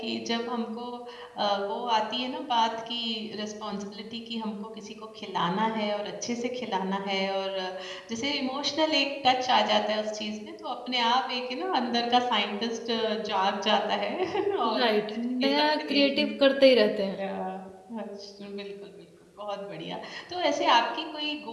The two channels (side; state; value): both; identical; correlation 1.00